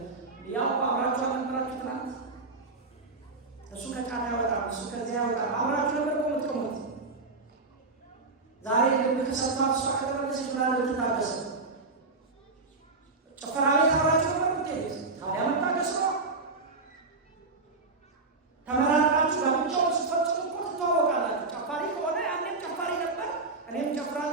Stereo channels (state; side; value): quieter; left; 3.7 dB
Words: ያው አብራችሁ አልነበራችሁ ትናንት እሱ ከጫና ያወጣል እሱ ከዚያ ያወጣል አብራችሁ ነበር ቆምት ዛሬ ከሰፋ እሱ አከረበሰች ምናለ ልትታገሰ ጭፈራ ቤት አብራችሁ ነበር ምትሄድ ታዲያ መታገስ ነው። ተመራቃችሁ ለብቻው ስፈጽሙ እኮ ትተዋወቃላችሁ። ጨፋሪ ከሆነ ያንን ጨፋሪ ነበር እኔም